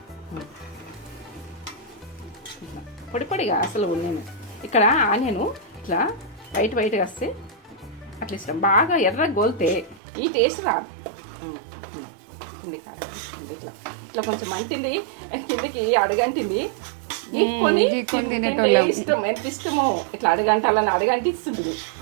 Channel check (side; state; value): left; drops out; at 10.0 s